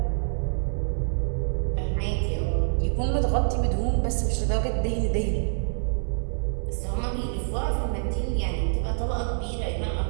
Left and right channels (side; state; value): left; silent; 61 dB below the other